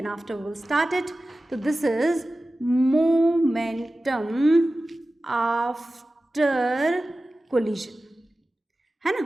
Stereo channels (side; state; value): both; normal; correlation 0.95